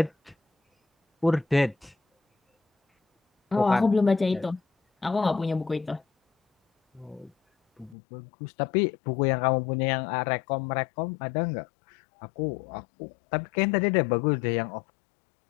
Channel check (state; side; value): drops out; right; at 8.0 s